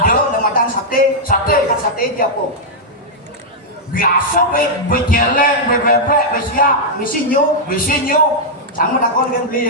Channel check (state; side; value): normal; both; correlation -0.05